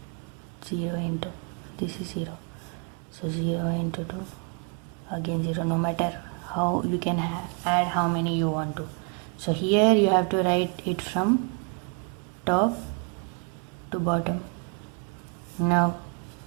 into, this is 0, so 0 into 2, again 0, no matter how you can add how many you want to. So here you have to write it from top to bottom. Now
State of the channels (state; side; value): quieter; left; 35.9 dB